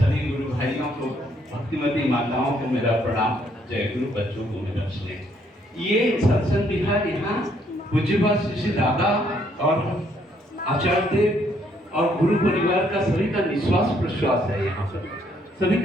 गुरु भाइयों को, भक्तिमती माताओं को मेरा प्रणाम, जय गुरु, बच्चों को मेरा स्नेह। ये सत्संग बिहार यहाँ पूज्यपाद श्री दादा और आचार्य देव और गुरु परिवार का सभी का निश्वास प्रश्वास है। यहाँ पर सभी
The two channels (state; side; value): normal; both; correlation 0.69